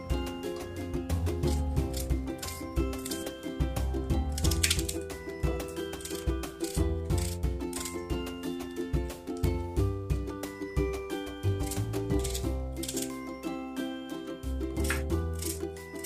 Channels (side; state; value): both; identical; correlation 1.00